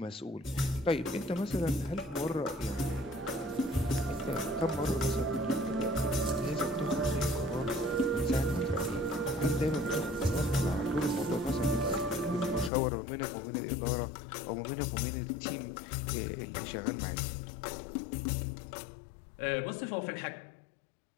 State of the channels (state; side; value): drops out; right; at 12.7 s